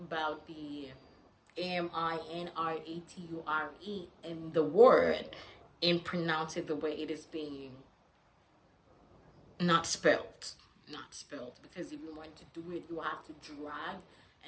about the MINRATURE in the word and pronounce it the way it is being not spelled. Not spelled. Because if you want to do it, you have to drag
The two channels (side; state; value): both; identical; correlation 1.00